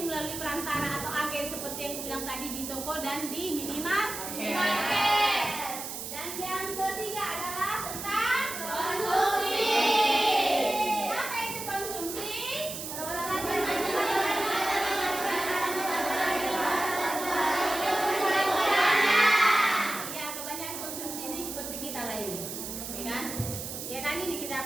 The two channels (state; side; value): noise; right; hiss, 7 dB below the sound